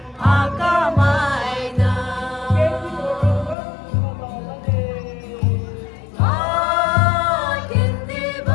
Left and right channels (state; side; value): drops out; right; at 3.6 s